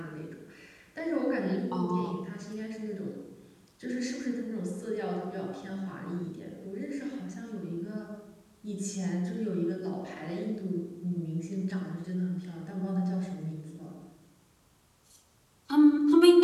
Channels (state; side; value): identical; both; correlation 1.00